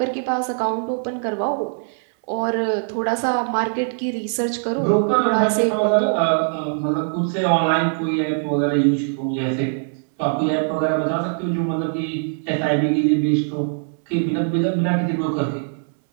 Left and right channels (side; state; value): left; silent; 65 dB below the other